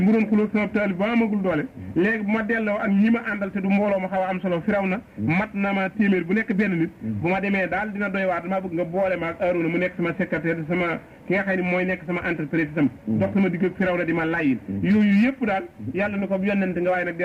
doon xulóog sama taal bi ba amagul doole léegi bu ma delloo ak ñi ma àndal te du mbooloo ma xaw a am solo Firawna mat na ma téeméer bu nekk benn nit bu ma demee daal dina doy waat damaa bëgg nga boole ma ak Aaroona mu nekk sama secrétaire sama ki nga xam ne mooy nekk sama entreprise itam dox sama digg ak Firawna di ma layin yooyu yëpp daal yàlla na ko yonent nga waaye nag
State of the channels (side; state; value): both; identical; correlation 1.00